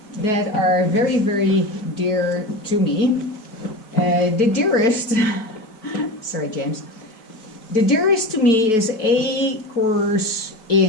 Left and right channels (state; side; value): late; right; 4.6 ms